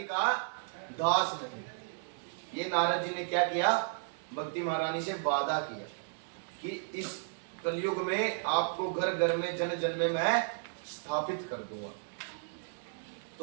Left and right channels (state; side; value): silent; left; digital silence